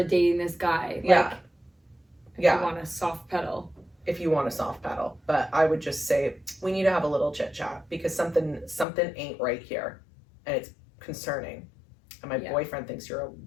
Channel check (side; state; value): right; drops out; at 8.8 s